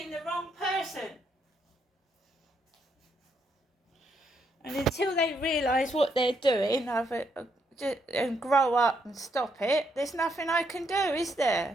the wrong person. And until they realise what they're doing and grow up and stop it, there's nothing I can do, is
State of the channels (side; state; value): both; normal; correlation 0.76